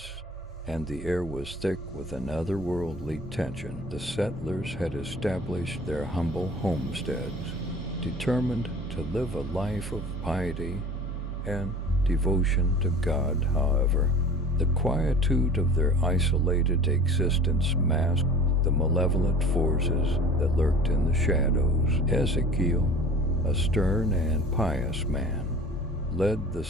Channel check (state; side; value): normal; both; correlation 0.42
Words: and the air was thick with an otherworldly tension. The settlers had established their humble homesteads, determined to live a life of piety and devotion to God. However, the quietude of their isolated existence masked the malevolent forces that lurked in the shadows. Ezekiel, a stern and pious man, led the